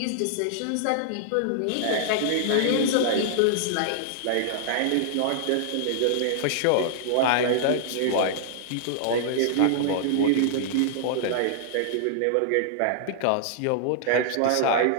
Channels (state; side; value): different; both; correlation -0.01